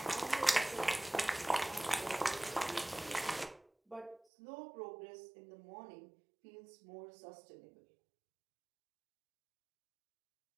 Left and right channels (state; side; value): drops out; left; at 4.2 s